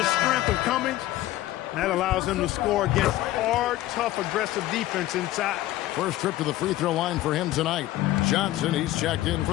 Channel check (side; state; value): right; quieter; 15.4 dB